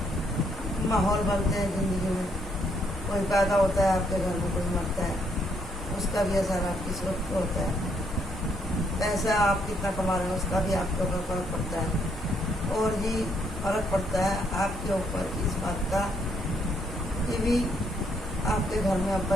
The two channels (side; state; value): both; normal; correlation 0.72